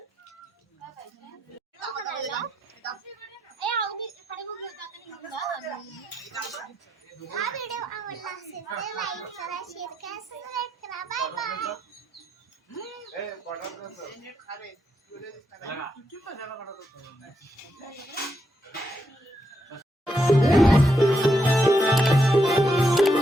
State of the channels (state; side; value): normal; both; correlation 0.80